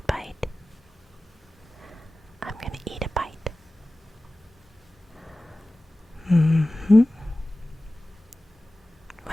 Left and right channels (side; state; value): both; normal; correlation 0.96